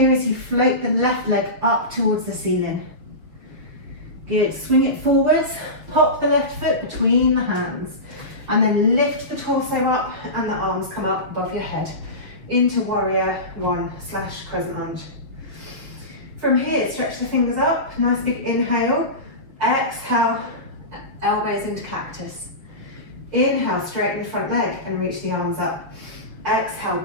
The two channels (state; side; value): late; left; 6.5 ms